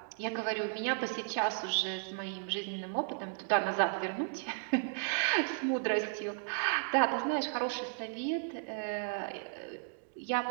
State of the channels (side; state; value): left; silent; digital silence